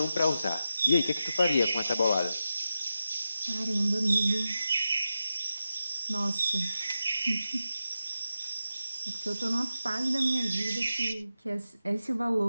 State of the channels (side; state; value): both; inverted; correlation -0.91